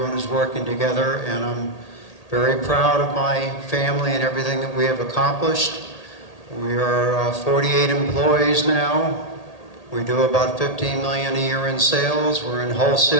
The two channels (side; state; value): right; late; 1.8 ms